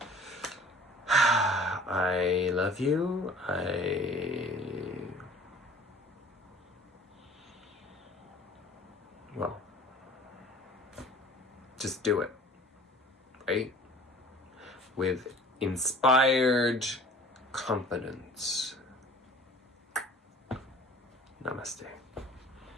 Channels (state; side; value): normal; both; correlation 0.48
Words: I love you. Well, just do it, right? With inspired confidence. Namaste.